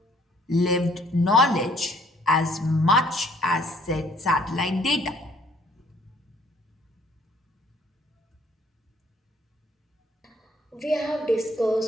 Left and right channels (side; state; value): both; normal; correlation 0.61